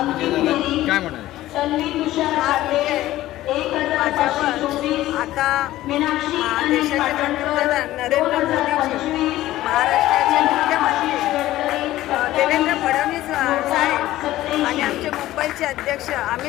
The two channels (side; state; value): right; quieter; 15.3 dB